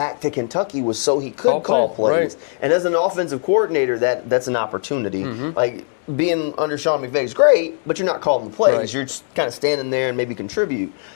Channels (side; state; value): right; silent; 66 dB below the other